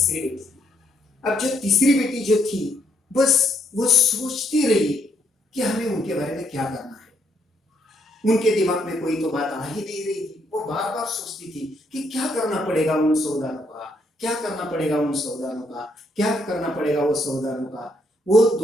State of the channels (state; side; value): normal; both; correlation 0.74